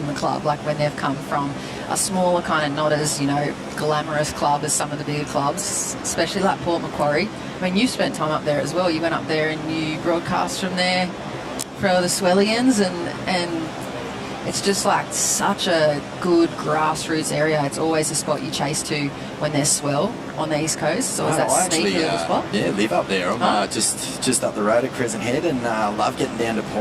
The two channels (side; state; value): both; identical; correlation 1.00